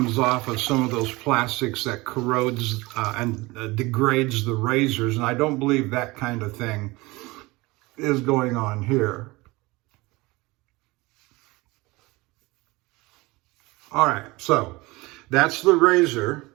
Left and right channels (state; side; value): quieter; left; 22.4 dB